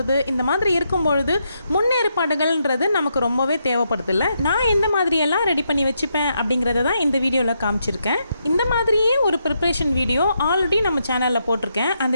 இந்த மாதிரி இருக்கும் பொழுது முன்னேற்பாடுகள்ன்றது நமக்கு ரொம்பவே தேவைப்படுது. இல்லை, நான் எந்த மாதிரியெல்லாம் ரெடி பண்ணி வச்சுப்பேன் அப்படிங்கிறத தான் இந்த வீடியோவில் காமிச்சிருக்கேன். இந்த மாதிரியே ஒரு ப்ரிப்ரேஷன் வீடியோ ஆல்ரெடி நம்ம சேனலில் போட்டிருக்கேன். அந்த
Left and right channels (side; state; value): both; inverted; correlation -0.80